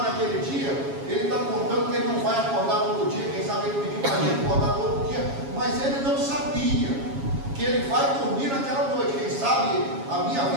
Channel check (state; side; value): late; left; 7.3 ms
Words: naquele dia, ele está contando que ele não vai acordar todo dia, quem sabe ele pediu para ele acordar todo dia, mas ele não sabia que ele vai dormir naquela noite. Quem sabe a minha